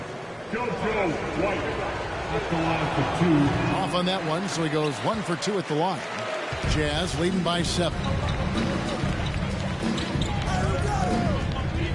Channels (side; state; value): both; identical; correlation 1.00